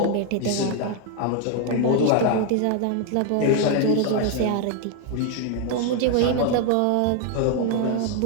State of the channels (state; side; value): different; both; correlation 0.01